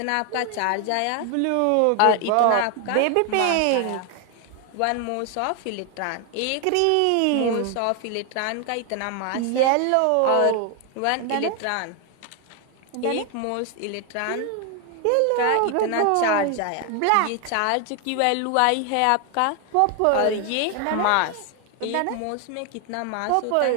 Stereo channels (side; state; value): both; different; correlation 0.01